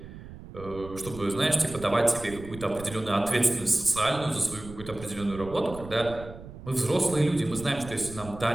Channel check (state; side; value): noise; right; rumble, 14 dB below the sound